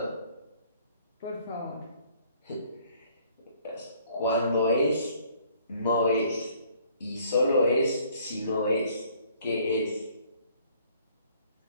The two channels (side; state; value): both; inverted; correlation -0.60